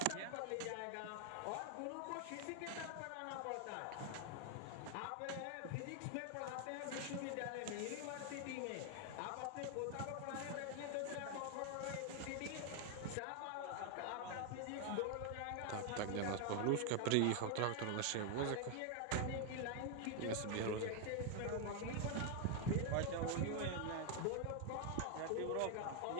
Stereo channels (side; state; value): both; different; correlation 0.00